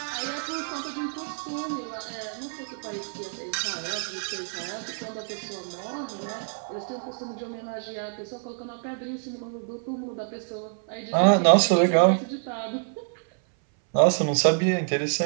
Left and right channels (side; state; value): left; silent; 60 dB below the other